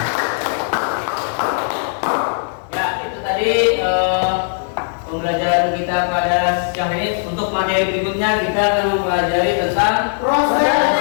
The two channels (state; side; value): silent; right; digital silence